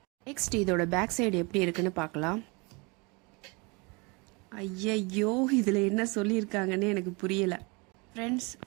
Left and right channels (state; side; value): quieter; left; 28.9 dB